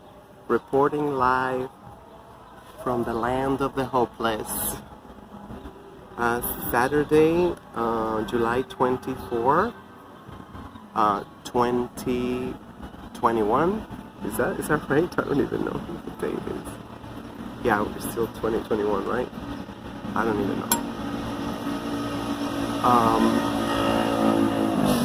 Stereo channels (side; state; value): both; identical; correlation 1.00